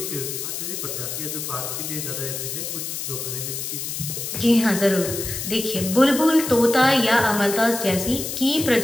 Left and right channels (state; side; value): noise; left; hiss, 5 dB below the sound